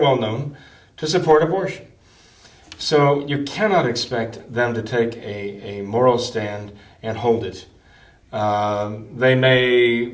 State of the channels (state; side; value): identical; both; correlation 1.00